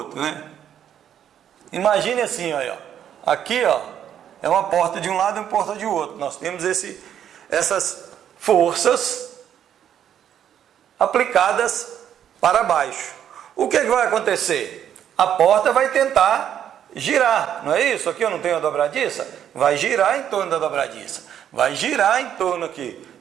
né? Imagine assim, ó. Aqui, ó, é uma porta de um lado e uma porta de outro. Nós temos essas forças aplicadas para baixo. O que vai acontecer? A porta vai tentar girar, não é isso? Aqui eu não tenho a dobradiça? Vai girar em torno da dobradiça. Vai girar em torno aqui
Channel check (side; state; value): left; quieter; 9.7 dB